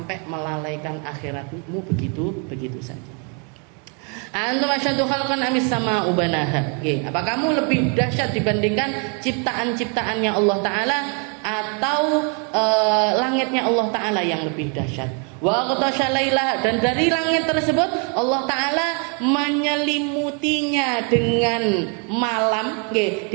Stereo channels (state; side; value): quieter; left; 36.8 dB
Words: melalaikan akhiratmu begitu saja. Antum asyaddu khalqan amis sama ubanaha. Apa kamu lebih dahsyat dibandingkan ciptaan-ciptaannya Allah Ta'ala atau langitnya Allah Ta'ala yang lebih dahsyat? Wa aghtasha lailaha, dan dari langit tersebut Allah Ta'ala menyelimutinya dengan malam.